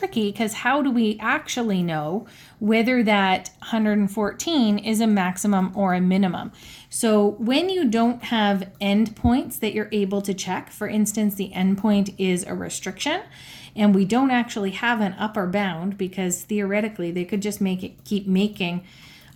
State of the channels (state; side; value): identical; both; correlation 1.00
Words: because how do we actually know whether that 114 is a maximum or a minimum? So when you don't have endpoints that you're able to check, for instance, the endpoint is a restriction, and we don't actually have an upper bound because theoretically they could just keep making